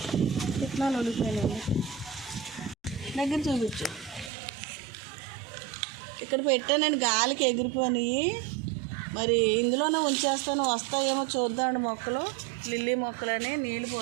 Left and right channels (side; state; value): left; drops out; at 4.3 s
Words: విత్తనాలు ఉడికిపోయినాయి. దగ్గర చూపించు. ఇక్కడ పెట్టానండి, గాలికి ఎగిరిపోయి మరి ఇందులోనే ఉంచేస్తాను, వస్తాయేమో చూద్దామండి. మొక్కలు లిల్లీ మొక్కలని నీళ్ళు